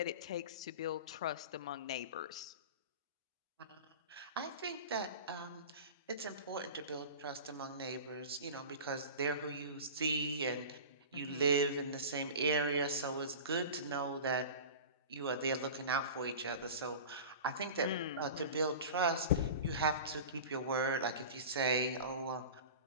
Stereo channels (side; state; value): both; inverted; correlation -0.34